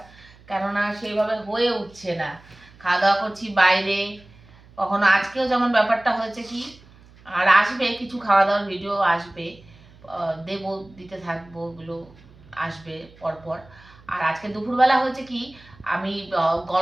কেননা সেইভাবে হয়ে উঠছে না। খাওয়া দাওয়া করছি বাইরে, কখনো আজকেও যেমন ব্যাপারটা হয়েছে কি, আর আসবে কিছু খাওয়া দাওয়ার ভিডিও আসবে, দেবো, দিতে থাকবো, ওগুলো আসবে পরপর। আর আজকে দুপুরবেলা হয়েছে কি, আমি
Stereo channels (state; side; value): noise; right; hum, 25 dB below the sound